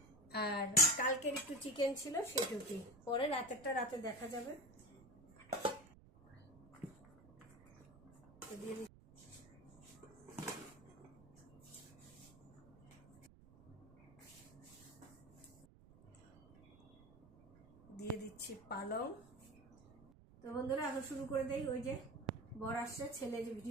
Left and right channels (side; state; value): right; noise; rumble, 23 dB below the sound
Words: আর কালকের একটু চিকেন ছিল সেটুকুই, পরে রাতেরটা রাতে দেখা যাবে। দিয়ে দিচ্ছি পালং। তো বন্ধুরা এখন শুরু করে দেই। ওই যে বর আসছে, ছেলে যে